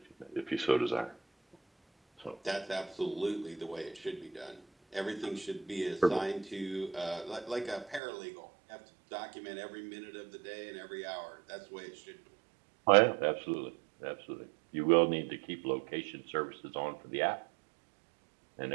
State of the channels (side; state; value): left; drops out; at 8.0 s